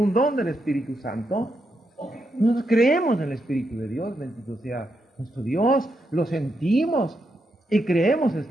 don del Espíritu Santo. Nosotros creemos en el Espíritu de Dios, bendito sea nuestro Dios, lo sentimos y creemos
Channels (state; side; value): normal; both; correlation 0.82